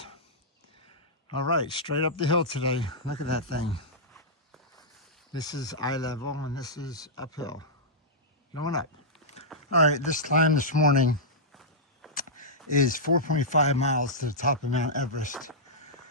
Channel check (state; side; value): normal; both; correlation -0.12